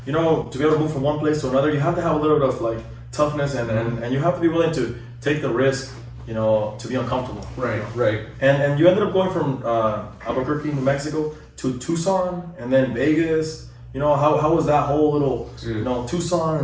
you know, to be able to move from one place to another, you have to have a little bit of like toughness and you have to be willing to take the risk, you know, to be uncomfortable. Right, you know? right. And you ended up going from Albuquerque, New Mexico to Tucson and then Vegas. You know, how was that whole little, you know, Tucson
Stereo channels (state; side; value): identical; both; correlation 1.00